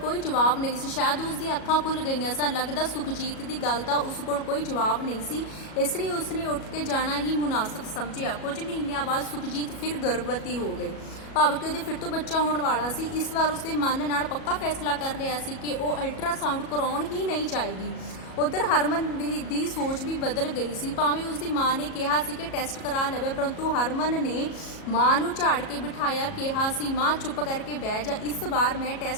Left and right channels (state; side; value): late; right; 37 ms